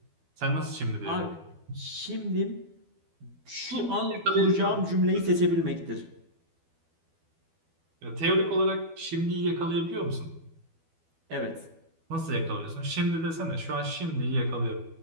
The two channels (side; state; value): left; late; 12 ms